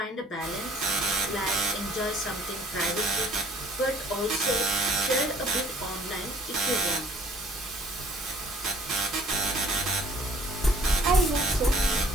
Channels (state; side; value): normal; both; correlation 0.58